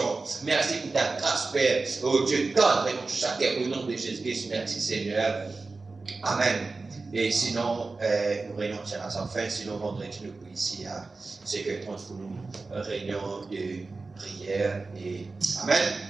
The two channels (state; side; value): quieter; left; 3.8 dB